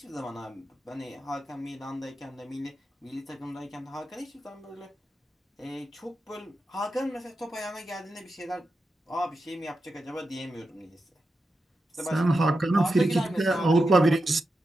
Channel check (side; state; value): both; normal; correlation 0.89